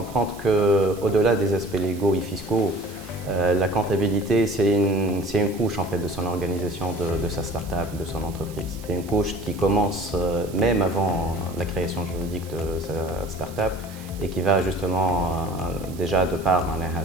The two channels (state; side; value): noise; right; hiss, 20 dB below the sound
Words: qu'au-delà des aspects légaux et fiscaux, la comptabilité, c'est une couche en fait, de son organisation, de sa start-up, de son entreprise. C'est une couche qui commence même avant la création juridique de sa start-up et qui va justement déjà de par